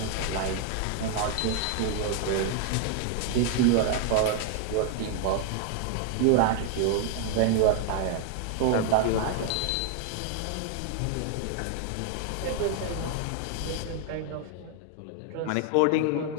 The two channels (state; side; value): different; both; correlation 0.00